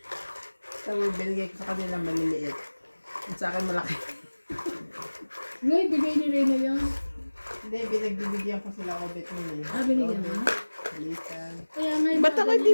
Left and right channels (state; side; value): inverted; both; correlation -1.00